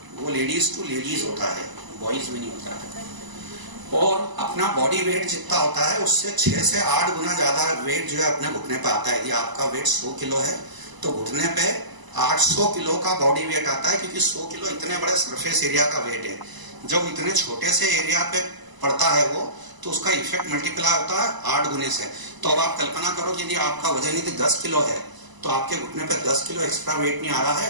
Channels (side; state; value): left; late; 1.0 ms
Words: वो लेडीज टू लेडीज होता है, बॉयज में नहीं होता है। और अपना बॉडी वेट जितना होता है उससे 6 से 8 गुना ज्यादा वेट जो है अपने घुटने पे आता है। यदि आपका वेट 100 किलो है तो घुटने पे 800 किलो का बॉडी वेट आता है, क्योंकि 100 किलो इतने बड़े सरफेस एरिया का वेट है। जब इतने छोटे से एरिया पे पड़ता है वो, तो उसका इफेक्ट मल्टीप्लाई होता है 8 गुने से। तो अब आप कल्पना करो कि यदि आपका वजन यदि 10 किलो है तो आपके घुटने पे 10 किलो एक्स्ट्रा वेट नहीं आ रहा